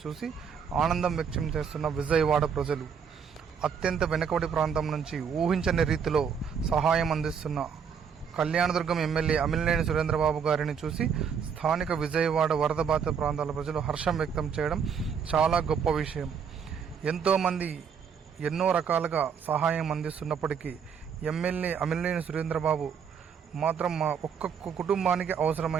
చూసి ఆనందం వ్యక్తం చేస్తున్న విజయవాడ ప్రజలు. అత్యంత వెనుకబడి ప్రాంతం నుంచి ఊహించని రీతిలో సహాయం అందిస్తున్న కళ్యాణదుర్గం ఎమ్మెల్యే అమిలనేని సురేంద్రబాబు గారిని చూసి స్థానిక విజయవాడ వరద బాధిత ప్రాంతాల ప్రజలు హర్షం వ్యక్తం చేయడం చాలా గొప్ప విషయం. ఎంతోమంది ఎన్నో రకాలుగా సహాయం అందిస్తున్నప్పటికీ ఎమ్మెల్యే అమిలనేని సురేంద్రబాబు మాత్రం మా ఒక్కొక్క కుటుంబానికి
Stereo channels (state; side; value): quieter; left; 6.9 dB